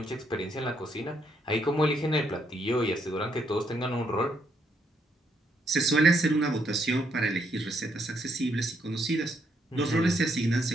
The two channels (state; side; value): normal; both; correlation 0.74